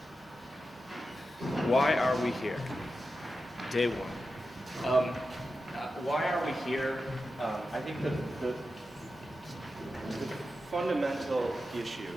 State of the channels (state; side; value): normal; both; correlation 0.91